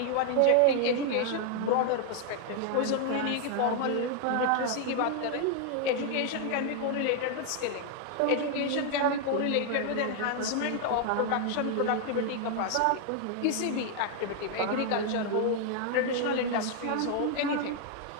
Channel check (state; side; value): different; both; correlation 0.00